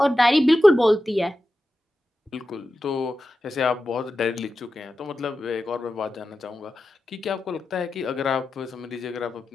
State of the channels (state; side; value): normal; both; correlation 0.92